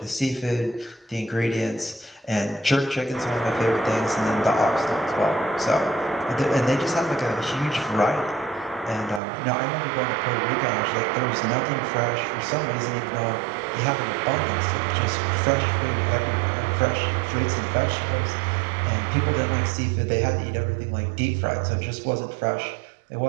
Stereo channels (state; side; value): drops out; left; at 9.2 s